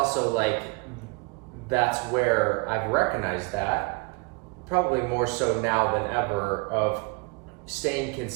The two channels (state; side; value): quieter; left; 30.8 dB